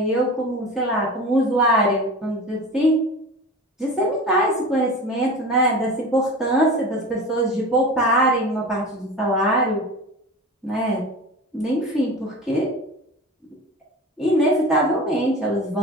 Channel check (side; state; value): both; normal; correlation 0.33